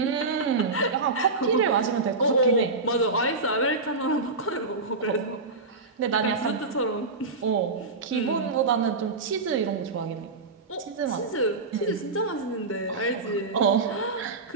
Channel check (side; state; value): left; quieter; 3.7 dB